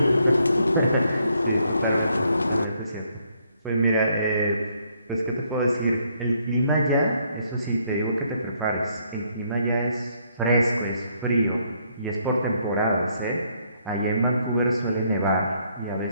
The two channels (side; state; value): both; inverted; correlation -0.71